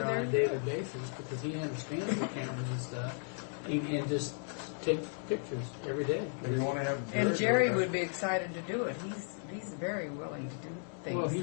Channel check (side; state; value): right; silent; 54 dB below the other